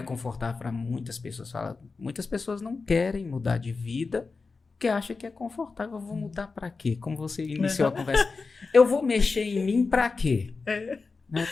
confortável para muitas pessoas, muitas pessoas não querem mudar de vida porque acham que é confortável. Eu vou mudar para quê? Como você iniciou a conversa, eu vou mexer em mim para quê? Né?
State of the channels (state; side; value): quieter; right; 4.3 dB